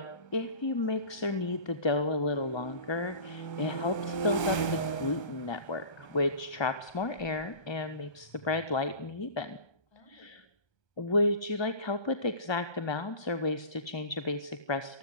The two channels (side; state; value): right; late; 1.3 ms